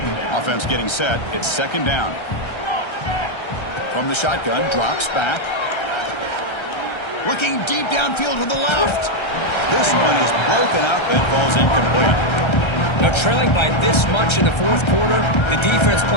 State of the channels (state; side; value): late; right; 1.3 ms